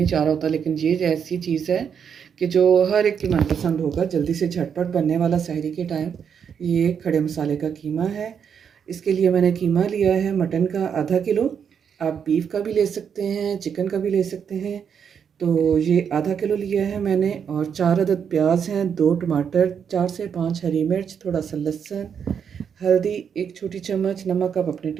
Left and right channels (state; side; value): quieter; left; 7.4 dB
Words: चाह रहा होता, लेकिन ये ऐसी चीज़ है कि जो हर एक की मनपसंद होगा, जल्दी से झटपट बनने वाला सहरी के टाइम ये खड़े मसाले का कीमा है। इसके लिए मैंने कीमा लिया है मटन का आधा किलो। आप बीफ का भी ले सकते हैं, चिकन का भी ले सकते हैं। तो ये आधा किलो लिया है मैंने। और 4 अदद प्याज हैं, 2 टमाटर, 4 से 5 हरी मिर्च, थोड़ा सा लहसुन, हल्दी 1 छोटी चम्मच, नमक आप अपने